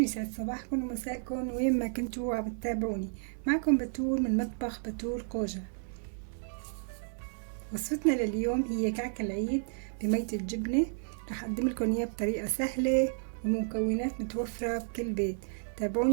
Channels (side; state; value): left; silent; 56 dB below the other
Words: يسعد صباحكم ومساءكم وين ما كنتوا عم بتتابعوني. معكم بتول من مطبخ بتول قوجة. وصفتنا لليوم هي كعك العيد بمية الجبنة. رح أقدم لكم إياه بطريقة سهلة ومكونات متوفرة بكل بيت.